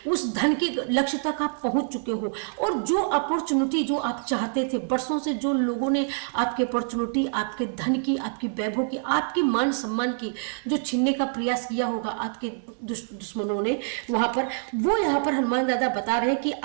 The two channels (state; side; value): silent; left; 61 dB below the other